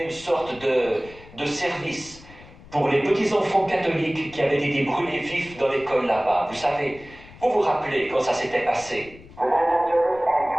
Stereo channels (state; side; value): noise; left; rumble, 20 dB below the sound